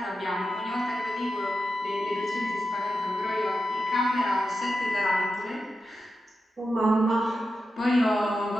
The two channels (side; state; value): both; normal; correlation 0.90